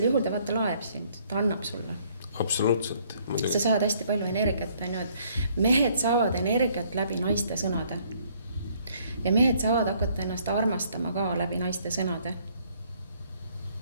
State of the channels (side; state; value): both; inverted; correlation -0.64